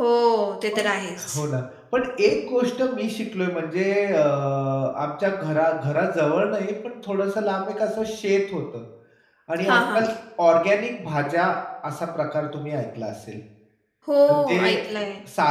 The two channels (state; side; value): identical; both; correlation 1.00